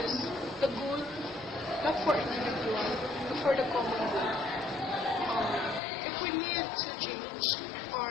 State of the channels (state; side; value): drops out; right; at 5.8 s